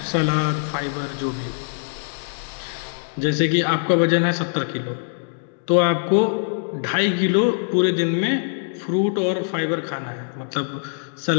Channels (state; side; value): silent; right; 64 dB below the other